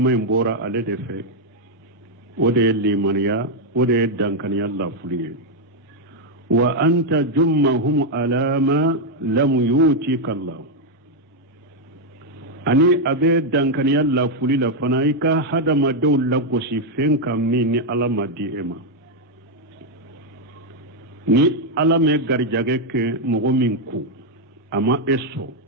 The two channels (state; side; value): normal; both; correlation 0.00